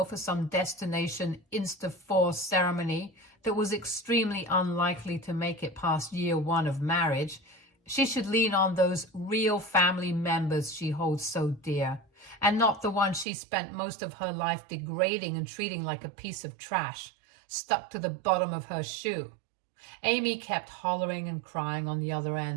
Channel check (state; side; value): drops out; left; at 13.2 s